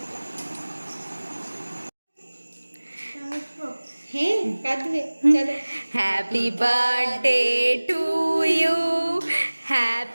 হ্যাঁ কাঁদবে চলো। Happy birthday to you,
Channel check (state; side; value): inverted; both; correlation -1.00